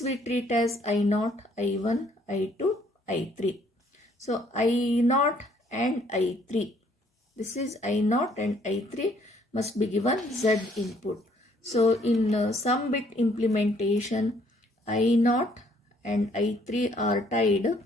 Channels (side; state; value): both; normal; correlation 0.64